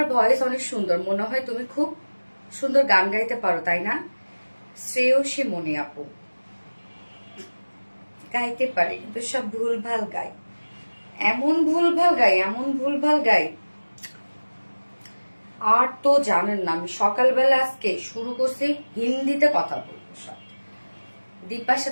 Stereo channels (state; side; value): inverted; both; correlation -1.00